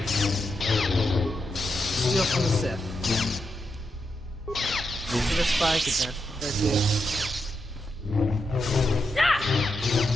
Steal from the Sith. Give a spike advance. There it is.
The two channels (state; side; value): normal; both; correlation 0.85